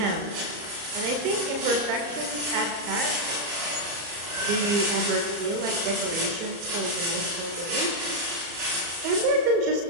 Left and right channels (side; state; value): left; late; 34 ms